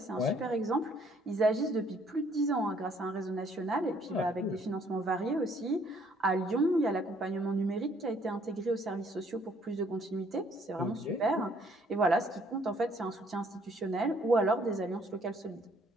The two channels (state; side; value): normal; both; correlation 0.64